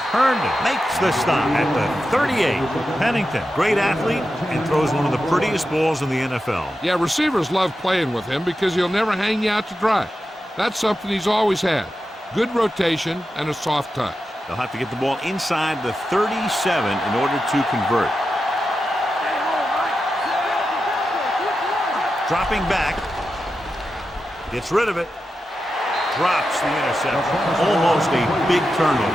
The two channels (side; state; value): both; normal; correlation 0.90